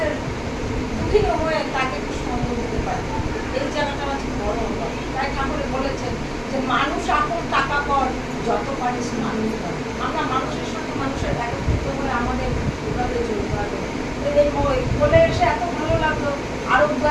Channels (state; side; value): identical; both; correlation 1.00